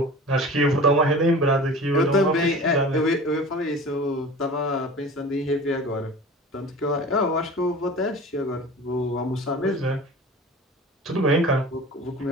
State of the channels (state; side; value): normal; both; correlation 0.38